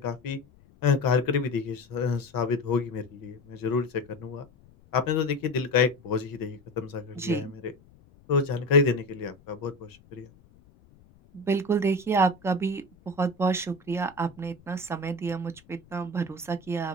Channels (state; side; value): noise; left; rumble, 27 dB below the sound